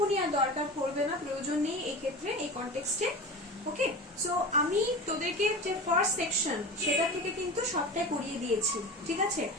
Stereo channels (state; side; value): normal; both; correlation 0.30